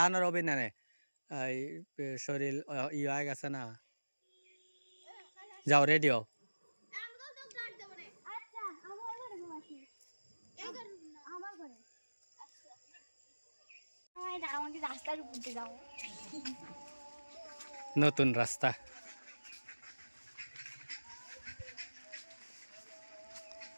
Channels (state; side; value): inverted; both; correlation -1.00